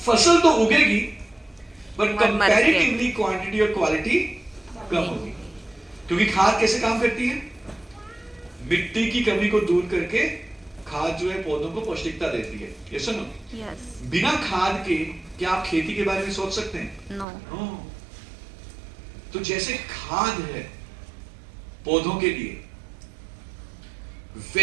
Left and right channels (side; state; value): left; drops out; at 17.2 s